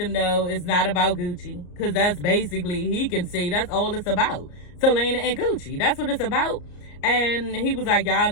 know it's not about Gucci, because that's basically, he can see, that's all it's about. Selena and Gucci, that's what it's about. And he was like, y'all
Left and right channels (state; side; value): late; right; 34 ms